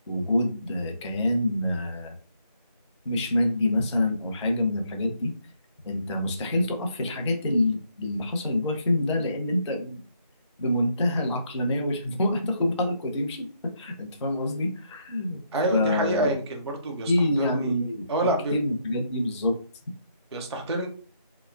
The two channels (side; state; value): both; inverted; correlation -0.73